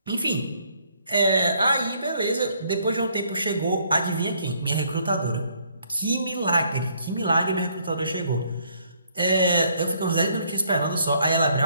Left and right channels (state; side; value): inverted; both; correlation -0.67